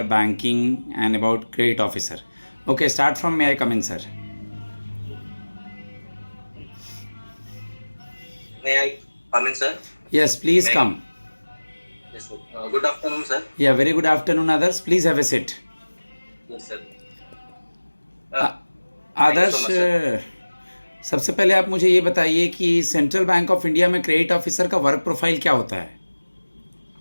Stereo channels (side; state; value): both; inverted; correlation -1.00